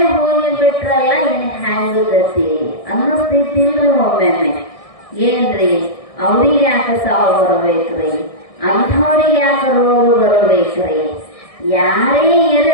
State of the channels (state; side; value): late; right; 1.6 ms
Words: ಹೋಗಿಬಿಟ್ರಲ್ಲ, ಇನ್ ಹ್ಯಾಂಗ ಗತಿ ಅನ್ನಿಸ್ತಿಲ್ರಿ ಒಮ್ಮೊಮ್ಮೆ. ಏನ್ರಿ ಅವ್ರಿಗೆ ಯಾಕೆ ಸಾವು ಬರಬೇಕ್ರಿ, ಅಂಥವ್ರಿಗೆ ಯಾಕೆ ರೋಗ ಬರಬೇಕ್ರಿ? ಯಾರೇ